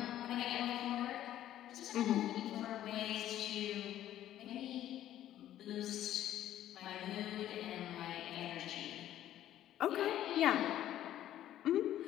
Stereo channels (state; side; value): quieter; right; 12.4 dB